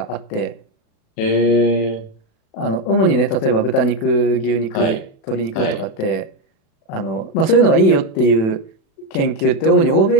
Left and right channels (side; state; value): right; late; 36 ms